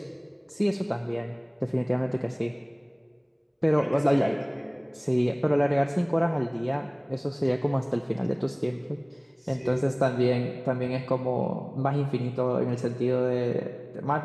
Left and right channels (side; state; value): both; identical; correlation 1.00